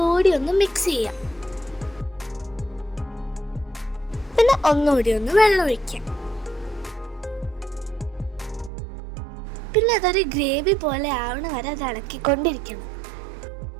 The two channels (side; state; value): left; drops out; at 8.7 s